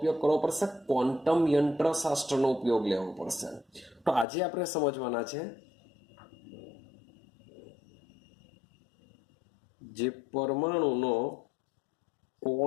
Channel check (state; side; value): drops out; right; at 4.2 s